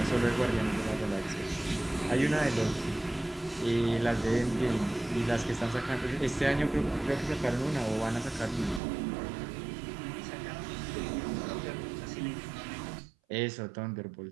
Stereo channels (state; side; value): drops out; left; at 8.8 s